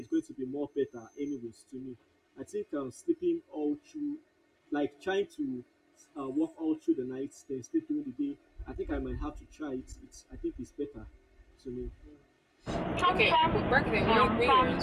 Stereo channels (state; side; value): identical; both; correlation 1.00